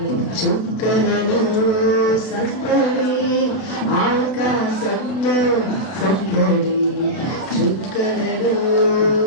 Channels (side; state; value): right; late; 32 ms